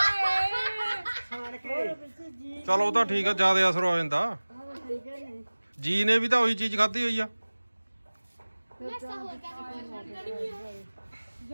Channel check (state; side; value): inverted; both; correlation -1.00